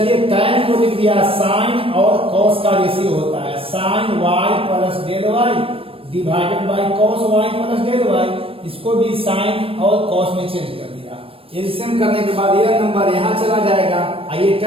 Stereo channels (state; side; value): late; left; 0.27 ms